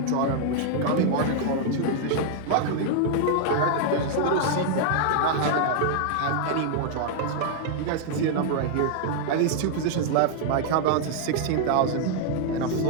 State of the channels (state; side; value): different; both; correlation 0.00